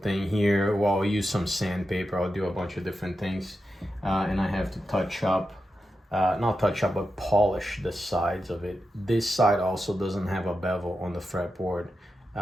here. Well, I'll use some sandpaper. I'll do a bunch of different things, and I have to touch up, not touch up, but polish the sides of it. This side also doesn't have a bevel on the fretboard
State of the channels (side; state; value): both; normal; correlation 0.89